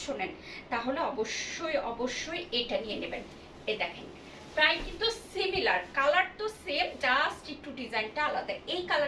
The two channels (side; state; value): both; identical; correlation 1.00